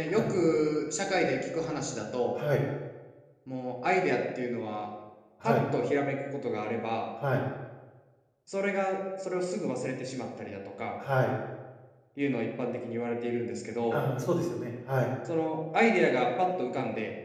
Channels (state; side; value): identical; both; correlation 1.00